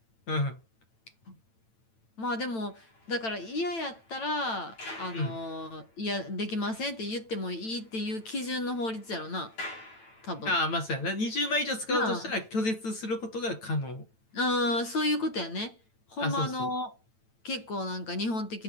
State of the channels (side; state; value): right; late; 9.0 ms